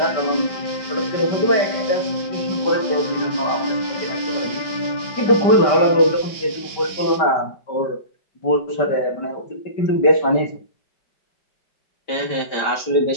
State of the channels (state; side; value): late; right; 5.2 ms